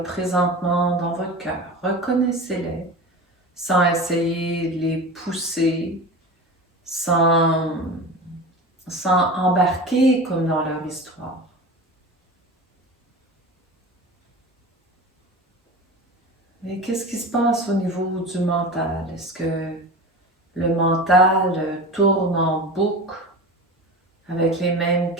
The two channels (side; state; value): both; normal; correlation 0.31